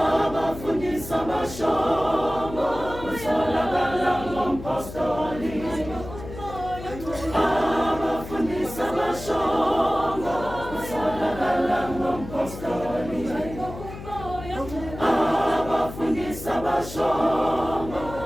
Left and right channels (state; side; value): noise; left; hum, 12 dB below the sound